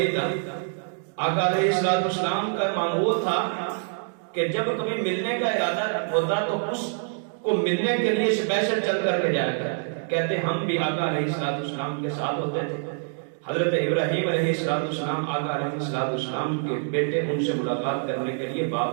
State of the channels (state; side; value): silent; left; digital silence